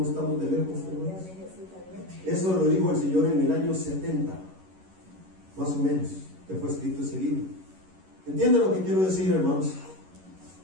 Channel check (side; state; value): left; late; 11 ms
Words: estamos de lejos, hermanos. Eso lo dijo el Señor en el año 70, más o menos, que fue escrito ese libro. ¿Entienden lo que quiero decir, hermanos?